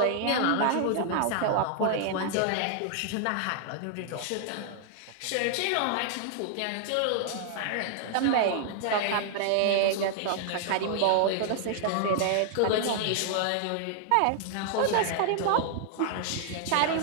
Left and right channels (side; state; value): both; different; correlation -0.01